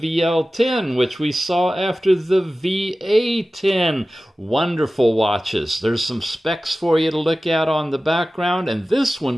which we saw after the VA10. Wonderful watches. There's some specs for you to look at on the background, and this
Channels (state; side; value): normal; both; correlation 0.96